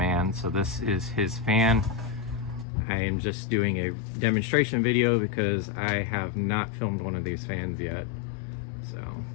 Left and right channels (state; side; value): drops out; right; at 2.7 s